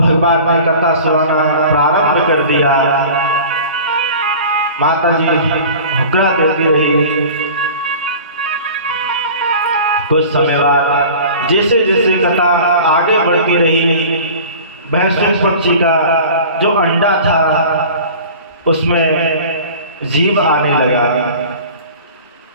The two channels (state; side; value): inverted; both; correlation -0.40